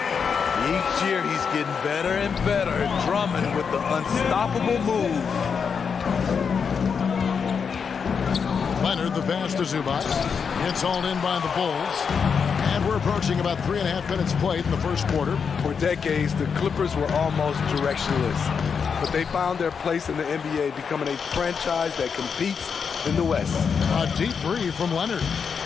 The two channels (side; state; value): right; quieter; 6.2 dB